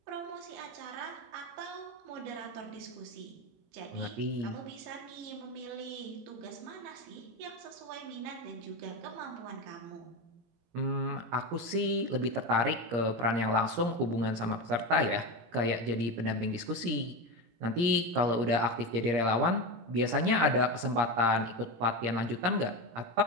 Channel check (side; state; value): left; late; 17 ms